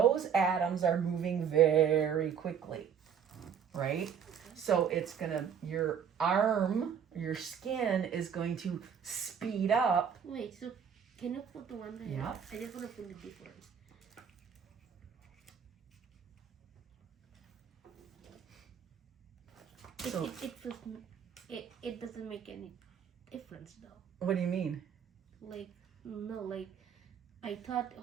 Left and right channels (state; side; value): quieter; left; 7.7 dB